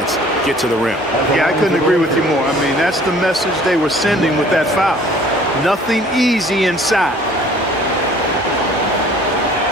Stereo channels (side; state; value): both; normal; correlation 0.53